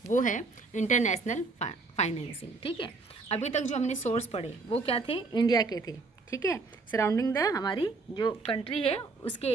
वो है इंटरनेशनल फाइनेंसिंग, ठीक है। अभी तक जो हमने सोर्स पढ़े वो क्या थे, इंडिया के थे, ठीक है, सराउंडिंग द हमारी जो कंट्री है उसके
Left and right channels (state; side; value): quieter; left; 3.9 dB